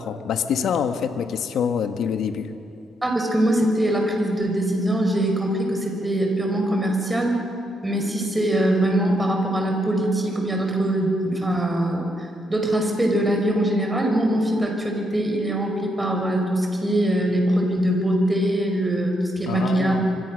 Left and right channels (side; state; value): both; normal; correlation 0.77